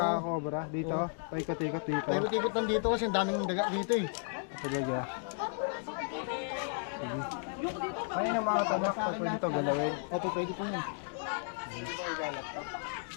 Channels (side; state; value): right; silent; 55 dB below the other